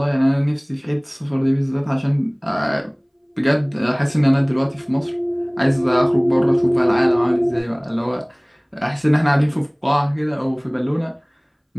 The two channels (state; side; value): identical; both; correlation 1.00